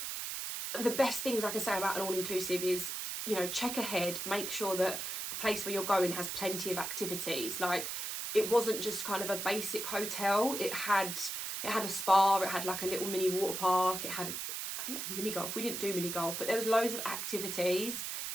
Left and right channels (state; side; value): noise; right; hiss, 4 dB below the sound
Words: the best things I can say about an all-inclusive is, you know, check ahead, make sure that the place where you're going has plenty of activities. Like, it wasn't just kind of a basic hotel. It had a spa, it had like a little mini water park, I think it had mini golf. We didn't do mini golf, but there was loads of activities.